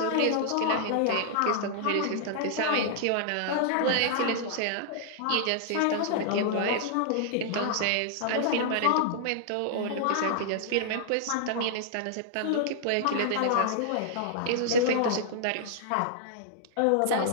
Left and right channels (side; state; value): both; different; correlation -0.01